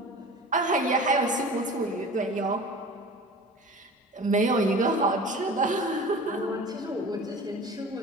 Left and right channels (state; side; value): normal; both; correlation 0.38